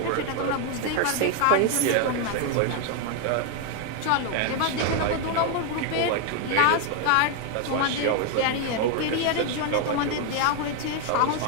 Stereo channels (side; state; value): both; different; correlation 0.01